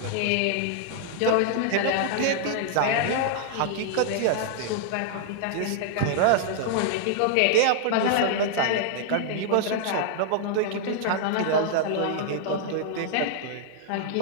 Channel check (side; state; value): both; different; correlation -0.01